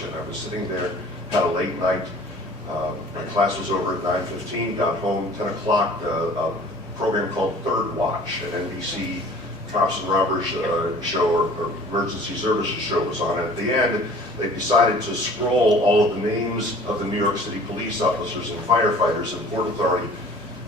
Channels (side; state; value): both; normal; correlation 0.48